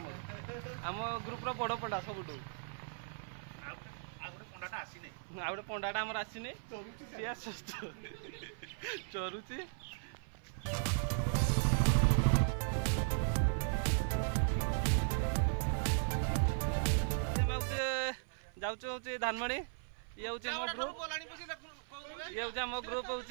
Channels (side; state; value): left; silent; 53 dB below the other